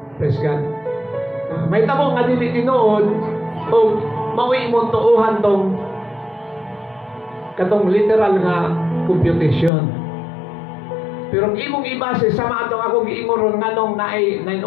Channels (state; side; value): drops out; right; at 9.7 s